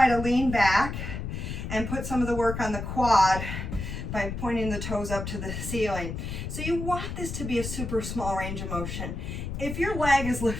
to lean back and put some of the work on the quad by pointing the toes up to the ceiling. So you want this to be a super small range of motion. If your leg is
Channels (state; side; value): noise; left; rumble, 5 dB below the sound